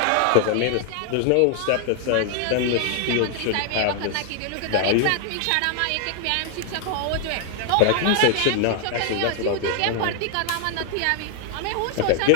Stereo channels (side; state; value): both; different; correlation 0.00